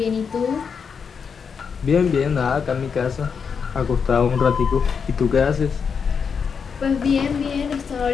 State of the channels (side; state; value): right; quieter; 6.2 dB